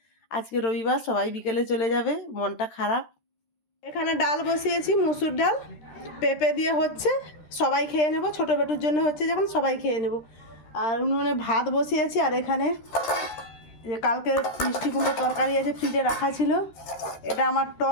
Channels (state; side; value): late; right; 13 ms